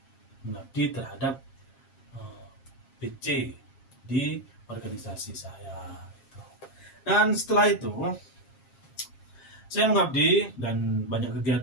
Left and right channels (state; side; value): late; right; 7.4 ms